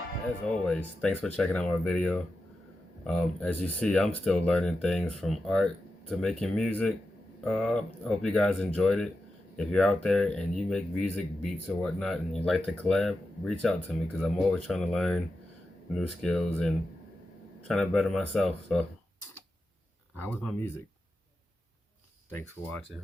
As always, thanks for checking out my video. As you see, I'm still learning things from art to making music. Hope you guys enjoyed it. If you're out there and you make music, beats or whatnot, and you'd like to collab, reach out to me because I'm always trying to learn new skills and trying to better myself. So, how was my music? Thanks for watching.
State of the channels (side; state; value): both; normal; correlation 0.90